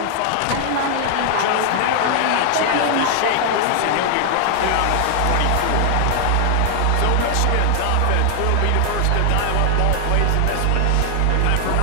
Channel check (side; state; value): both; different; correlation 0.00